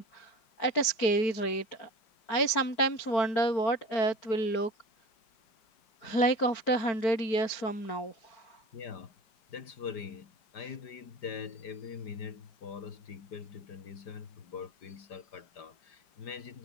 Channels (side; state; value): right; late; 4.5 ms